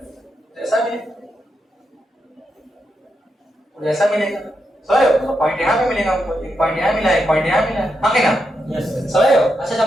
ऐसा भी ऐसा मिलेगा, समझ हो। पॉइंट यहाँ पे मिलेगा हमको, एक पॉइंट यहाँ मिला, एक पॉइंट यहाँ मिला, हाँ कि ना, समझ हो। अच्छा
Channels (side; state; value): both; normal; correlation 0.84